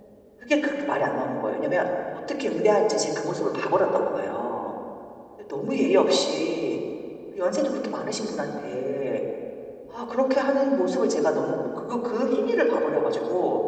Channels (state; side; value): identical; both; correlation 1.00